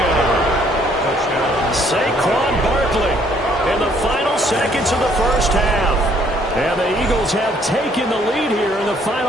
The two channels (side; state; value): both; normal; correlation 0.64